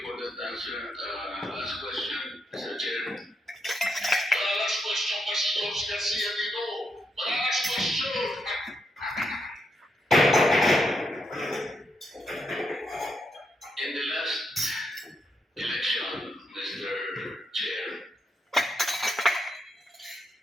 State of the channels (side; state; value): both; normal; correlation 0.81